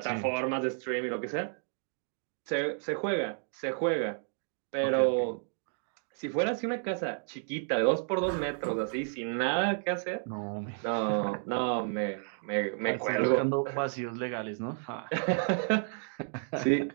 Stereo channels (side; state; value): left; silent; 57 dB below the other